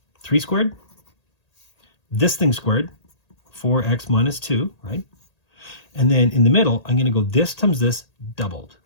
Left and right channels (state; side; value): late; right; 1.8 ms